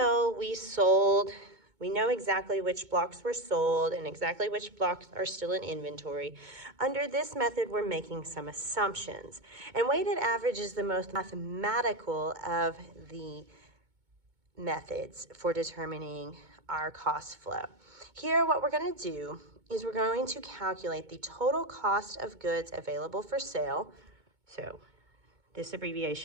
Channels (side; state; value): left; late; 2.2 ms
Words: we know exactly which blocks were sold and exactly which blocks are still in inventory. Under this method, we're making some assumptions. And weighted average is the most mathematical of the methods for determining our cost flow. Here, what we're going to do is we're going to calculate the total cost of goods available for sale. So this